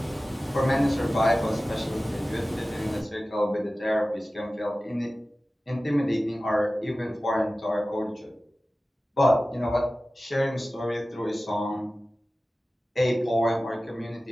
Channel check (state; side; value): normal; both; correlation 0.96